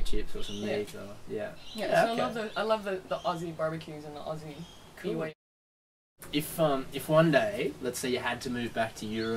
chips or some Yeah. meat, or yeah, Yeah, so okay. I love the Aussie barbecues and the Aussie Cool. way. If one day, let's say you had to move back to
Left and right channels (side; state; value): both; identical; correlation 1.00